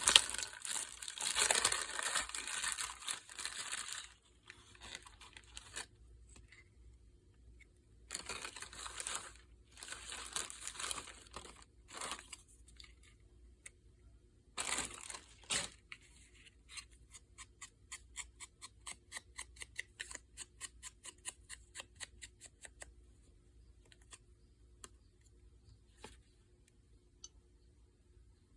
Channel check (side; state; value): both; identical; correlation 1.00